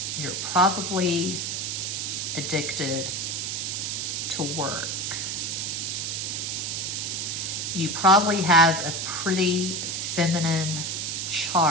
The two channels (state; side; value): noise; right; hiss, 2 dB below the sound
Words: you're probably addicted to work. You probably have a pretty feminine